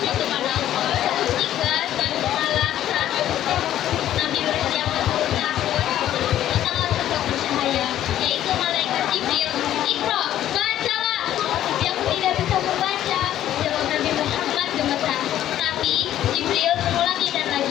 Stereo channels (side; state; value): right; quieter; 12.1 dB